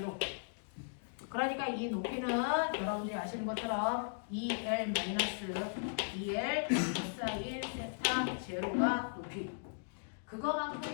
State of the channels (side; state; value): right; silent; digital silence